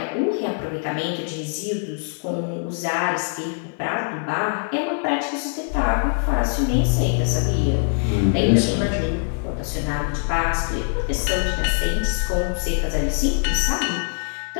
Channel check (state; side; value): silent; right; 63 dB below the other